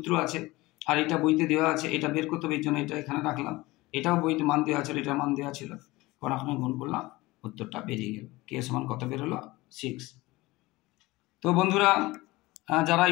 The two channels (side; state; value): right; quieter; 20.4 dB